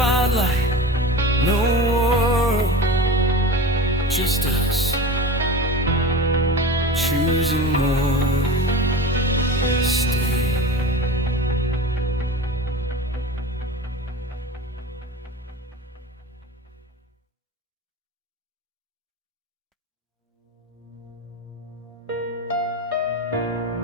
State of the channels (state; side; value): normal; both; correlation 0.32